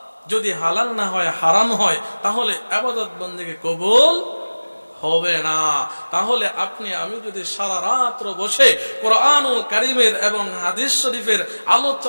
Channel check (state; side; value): inverted; both; correlation -1.00